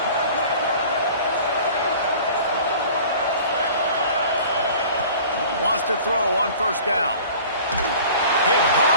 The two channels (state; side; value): inverted; both; correlation -0.45